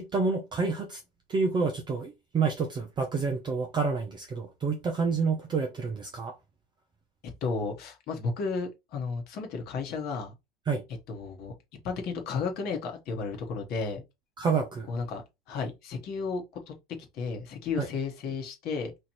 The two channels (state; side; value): normal; both; correlation 0.54